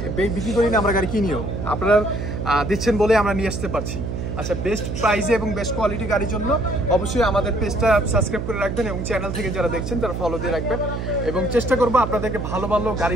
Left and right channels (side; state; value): right; noise; hum, 4 dB below the sound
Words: বিক্রি করি না, আমরা গাড়ি কিনিও। আপনারা দিচ্ছেন বলে আমরা নিয়ে আসতে পারছি। আচ্ছা, বেস্ট প্রাইসে এবং বেস্ট কোয়ালিটি গাড়ির জন্য অবশ্যই আমাদের পেজটা সাবস্ক্রাইব করে রাখবেন এবং চ্যানেল থেকে যারা দেখছেন তারা ফলো দিয়ে রাখবেন এবং চেষ্টা করবো আপনাদেরকে ভালো ভালো গাড়ি